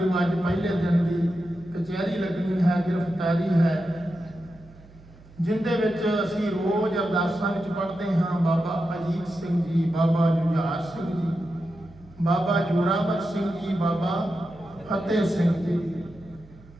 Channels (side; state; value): right; noise; hum, 23 dB below the sound